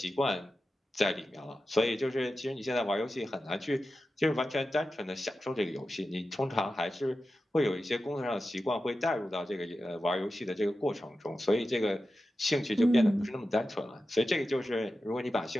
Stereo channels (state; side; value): normal; both; correlation 0.92